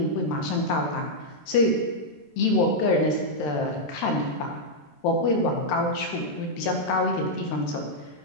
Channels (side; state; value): right; late; 13 ms